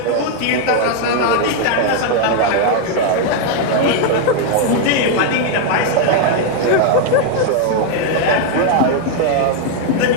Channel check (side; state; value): both; different; correlation 0.00